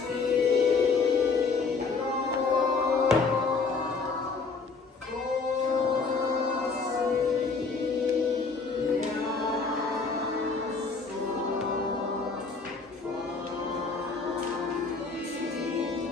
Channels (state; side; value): quieter; right; 4.5 dB